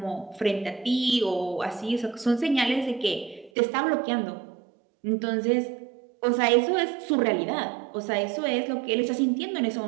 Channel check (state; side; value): drops out; left; at 3.5 s